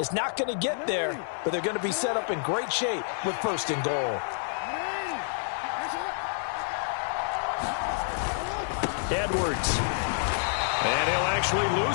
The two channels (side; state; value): right; silent; 59 dB below the other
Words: not going to get there, but they're going to be set up in great shape with 1st and goal. Edwards. And he'll actually